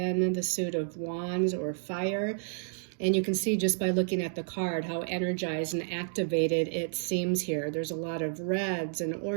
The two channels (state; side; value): silent; left; digital silence